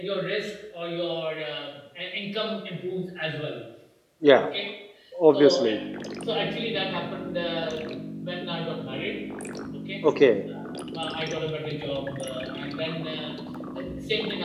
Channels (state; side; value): identical; both; correlation 1.00